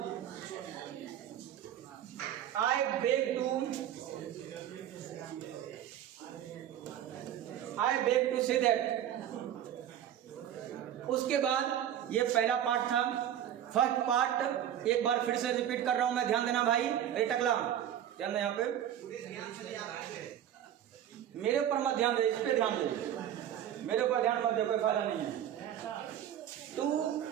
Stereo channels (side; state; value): left; quieter; 10.6 dB